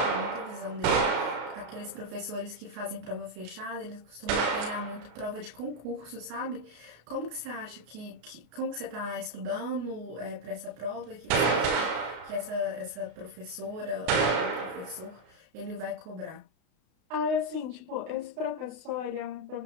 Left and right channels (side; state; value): left; late; 32 ms